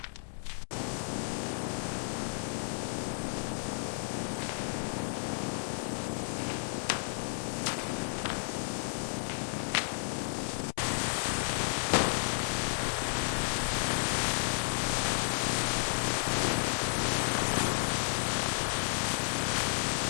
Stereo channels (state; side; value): silent; right; 56 dB below the other